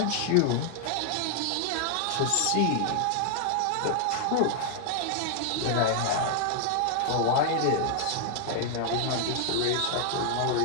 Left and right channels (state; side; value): different; both; correlation 0.00